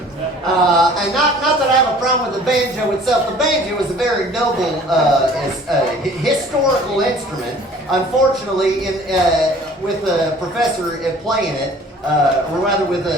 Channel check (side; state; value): both; normal; correlation 0.50